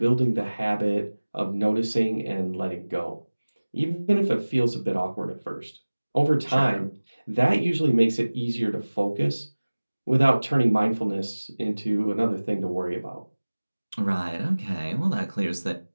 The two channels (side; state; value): both; inverted; correlation -1.00